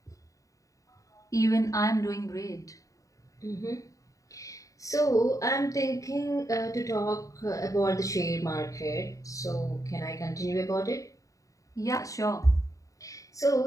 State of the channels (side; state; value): right; late; 0.16 ms